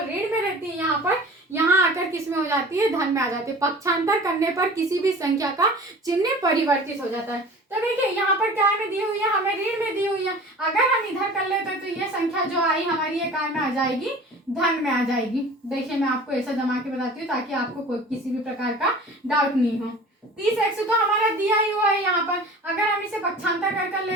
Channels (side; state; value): both; normal; correlation 0.41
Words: में रहती है यहाँ आकर किस में हो जाती है, धन में आ जाती है। पक्षांतर करने पर किसी भी संख्या का चिन्ह परिवर्तित हो जाता है। तो देखिए यहाँ पर क्या में दी हुई है, हमें ऋण में दी हुई है। अगर हम इधर कर लेते तो ये संख्या जो आई हमारी, ये काय में आ जाएगी, धन में आ जाएगी। देखिए मैं आपको ऐसा जमा के बताती हूँ ताकि आपको कोई किसी भी प्रकार का डाउट नहीं हो। 30x तो हमारा दिया ही हुआ है यहाँ पर, अगर हम इसे पक्षांतर कर